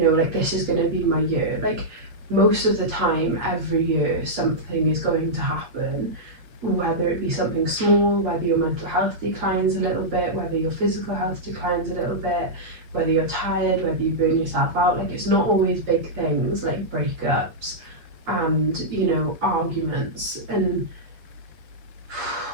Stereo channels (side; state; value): left; late; 7.8 ms